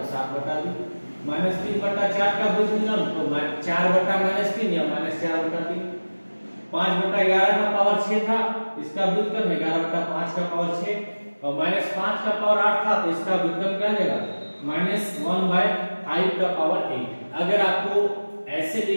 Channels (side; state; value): both; inverted; correlation -1.00